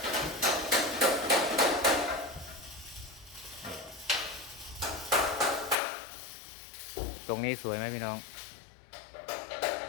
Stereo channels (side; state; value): right; drops out; at 5.8 s